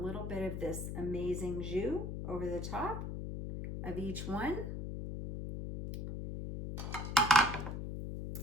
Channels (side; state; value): left; noise; hum, 5 dB below the sound